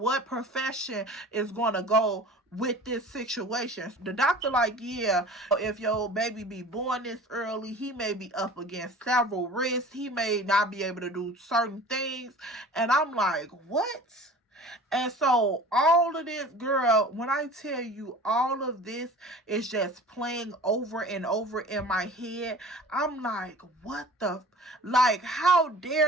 profession is going to go with this situation. The doctor like, yeah, if your baby be born this early, he may be up against several risks. He may not be able to do certain things. And I'm like, what? And so all of this, girl, when I tell you all of this is just playing over and over in my head, I'm like, what the, like, how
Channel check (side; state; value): both; normal; correlation 0.42